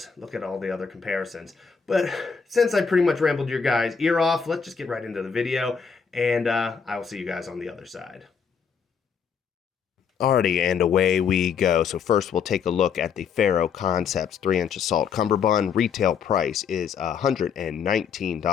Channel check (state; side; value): quieter; right; 6.4 dB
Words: look at all the other comparisons. But since I pretty much rambled your guys' ear off, let's just get right into the video, and I will see you guys on the other side. Alrighty, and away we go. So first we'll take a look at the Ferro Concepts 3-inch Assault Cumberbund. Retail price is